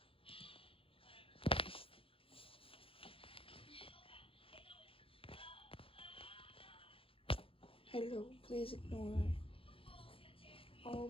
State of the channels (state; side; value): late; right; 0.27 ms